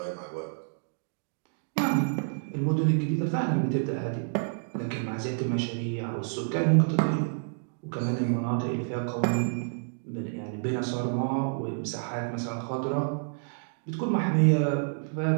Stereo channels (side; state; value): left; silent; digital silence